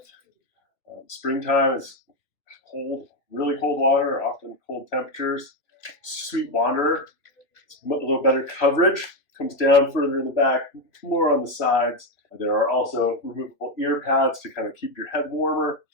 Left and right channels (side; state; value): right; late; 3.0 ms